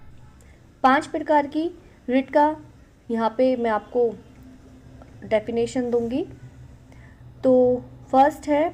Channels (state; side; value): identical; both; correlation 1.00